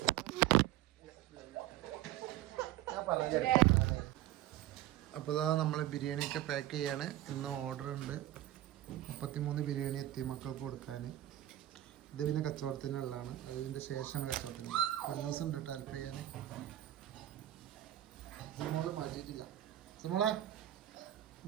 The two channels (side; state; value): left; quieter; 13.7 dB